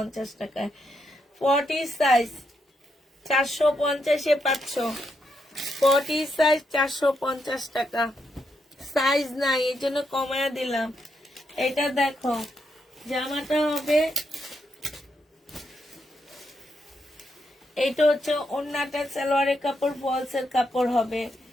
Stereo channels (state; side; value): normal; both; correlation 0.80